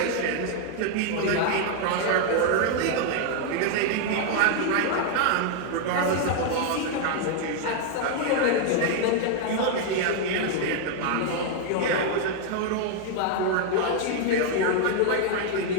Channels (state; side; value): different; both; correlation 0.00